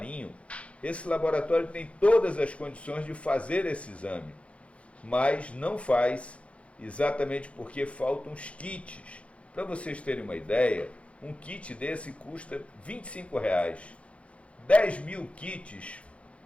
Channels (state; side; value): late; right; 0.062 ms